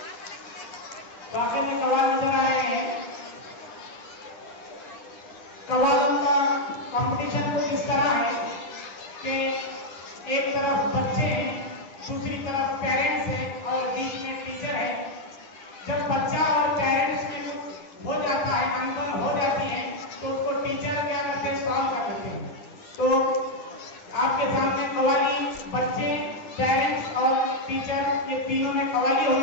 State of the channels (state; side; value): late; right; 10 ms